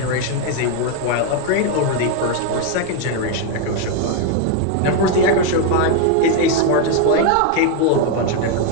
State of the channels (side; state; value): both; different; correlation 0.01